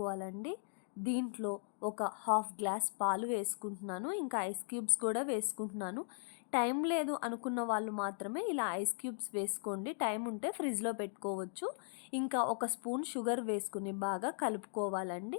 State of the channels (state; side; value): silent; right; digital silence